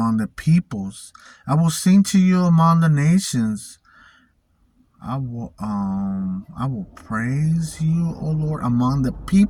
the peoples. I will sing to you among the nations. I will praise you, O Lord, among the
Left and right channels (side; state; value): both; identical; correlation 1.00